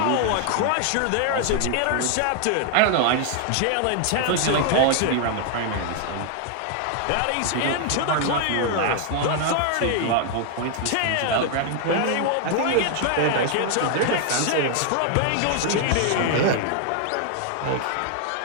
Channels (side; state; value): both; different; correlation 0.00